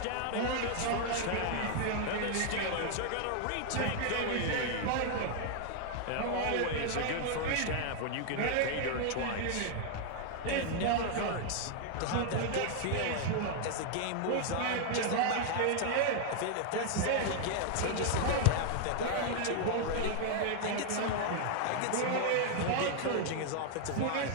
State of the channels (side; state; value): both; different; correlation 0.00